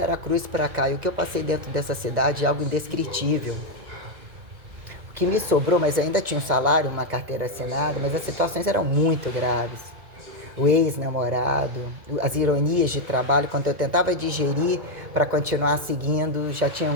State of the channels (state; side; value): late; left; 2.2 ms